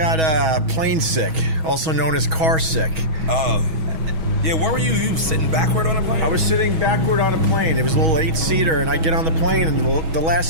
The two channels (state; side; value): late; left; 6.2 ms